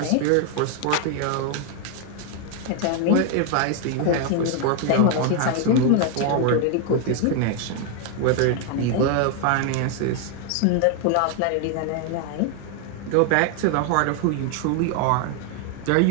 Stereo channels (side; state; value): both; different; correlation 0.00